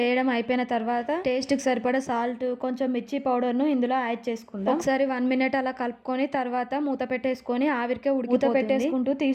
వేయడం అయిపోయిన తర్వాత టేస్ట్ కి సరిపడా సాల్ట్ కొంచెం మిర్చి పౌడర్ ను ఇందులో యాడ్ చేసుకుందాం. ఒకసారి 1 మినిట్ అలా కలుపుకొని తర్వాత మూత పెట్టేసుకొని ఆవిరికే మూత పెట్టేసుకుంటూ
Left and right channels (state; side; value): identical; both; correlation 1.00